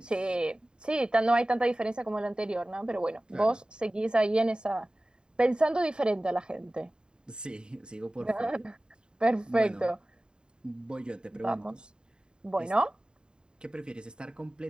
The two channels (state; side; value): late; left; 0.048 ms